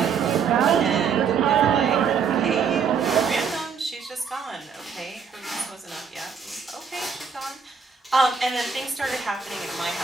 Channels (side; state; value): left; quieter; 6.2 dB